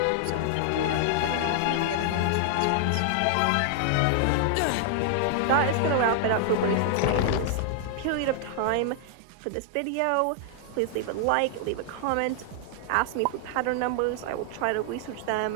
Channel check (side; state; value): both; different; correlation -0.01